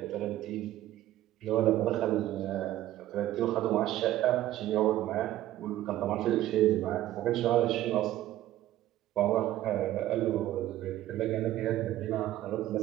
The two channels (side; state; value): left; quieter; 14.1 dB